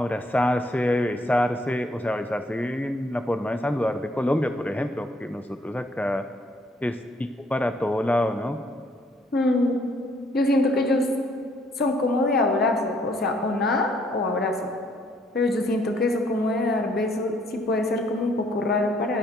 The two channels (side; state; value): both; normal; correlation 0.67